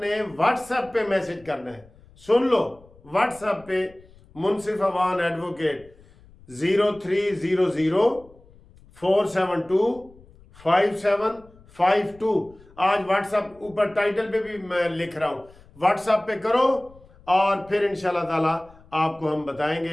व्हाट्सएप पे मैसेज करना है। सुन लो, व्हाट्सएप पे मुनसिफ अवान एडवोकेट 0300472572। आज व्हाट्सएप ऊपर टाइटल पे भी मैं लिख रहा हूँ, व्हाट्सएप पे करो और फिर इंशाल्लाह ताला आपको हम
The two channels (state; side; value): noise; left; rumble, 26 dB below the sound